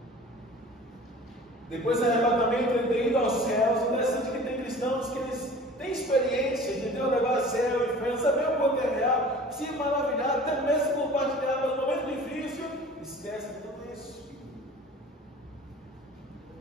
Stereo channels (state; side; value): normal; both; correlation 0.43